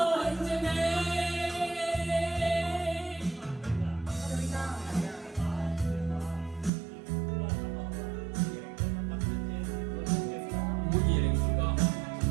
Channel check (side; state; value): left; drops out; at 6.7 s